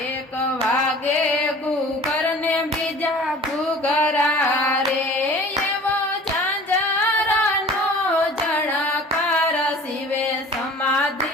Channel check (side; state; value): both; normal; correlation 0.45